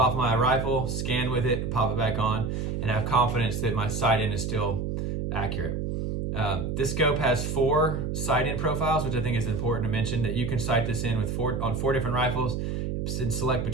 my rifle, scan with it, pop it back on, and have confidence that my sight-in is still accurate. This scope has 4 sight-in profiles, which I think is important to mention, that you can sight this in with on 4 different rifles and select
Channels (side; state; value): right; noise; hum, 2 dB below the sound